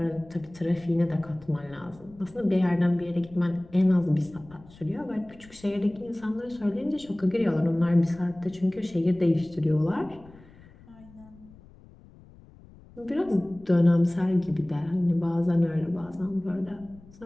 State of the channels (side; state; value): left; noise; rumble, 23 dB below the sound